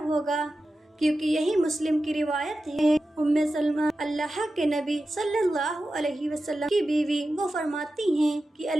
ہوگا، کیونکہ یہی مسلم کی روایت ہے۔ ام سلمہ اللہ کے نبی صلی اللہ علیہ وسلم کی بیوی، وہ فرماتی ہیں کہ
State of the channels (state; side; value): normal; both; correlation 0.92